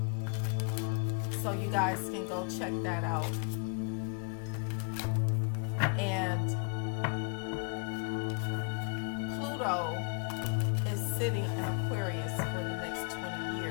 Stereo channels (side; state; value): right; quieter; 35.8 dB